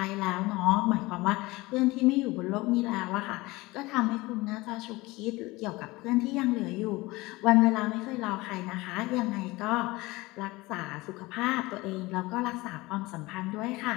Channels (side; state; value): right; quieter; 21.3 dB